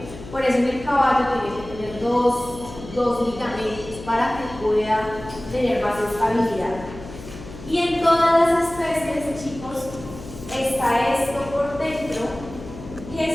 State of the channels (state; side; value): noise; left; hum, 14 dB below the sound